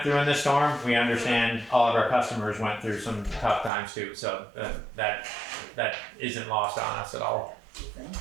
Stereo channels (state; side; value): drops out; left; at 3.7 s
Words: through in this storm. We understand all of our customers went through some tough times too. So that isn't lost on us at all.